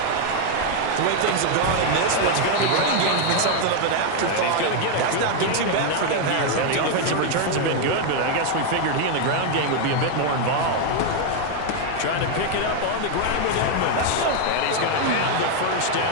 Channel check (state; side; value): different; both; correlation 0.01